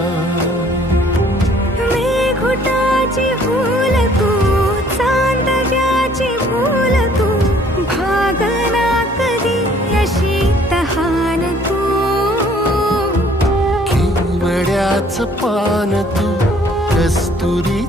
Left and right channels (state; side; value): normal; both; correlation 0.58